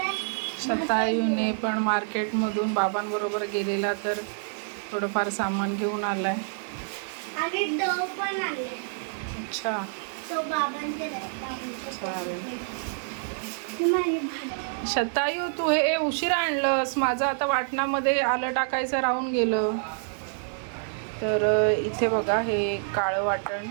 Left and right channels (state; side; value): silent; left; digital silence